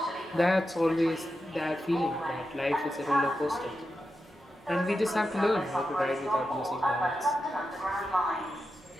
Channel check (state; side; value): normal; both; correlation 0.89